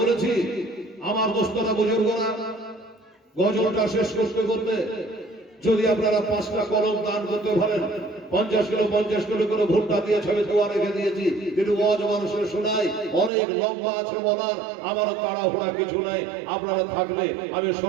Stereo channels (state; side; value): drops out; left; at 13.3 s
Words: আমার দোস্তরা বুজুর্গরা গজলটা শেষ করতে করতে যদি আপনারা 5টা কলম দান করতে পারেন, 50 কিলো করে ভুট্টা দিয়ে ছবি দোয়া রেখে দিয়েছি, কিন্তু ওয়াজ মানুষের শোনাই অনেক লম্বা আছে বলার, আমার তাড়াহুড়া কিছু নাই। আপনারা থাকলে আমি